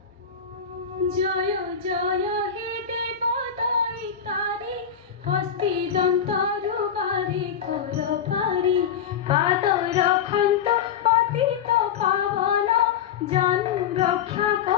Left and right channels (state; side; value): quieter; right; 7.7 dB